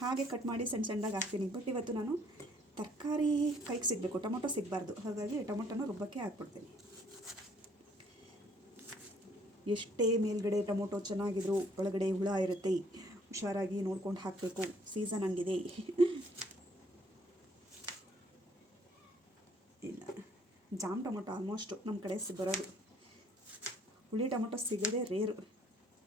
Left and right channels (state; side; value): normal; both; correlation 0.63